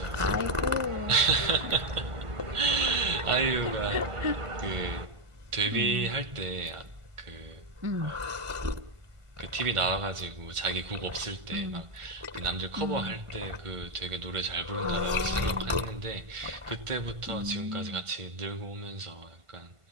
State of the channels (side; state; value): left; late; 1.5 ms